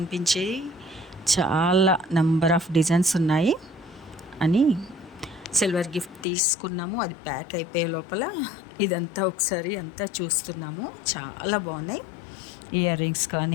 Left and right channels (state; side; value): drops out; right; at 6.2 s